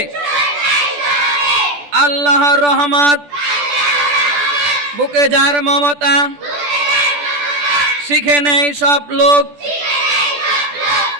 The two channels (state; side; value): late; left; 14 ms